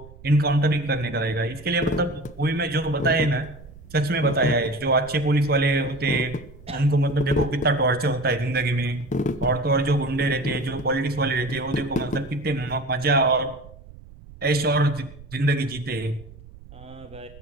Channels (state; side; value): noise; right; rumble, 20 dB below the sound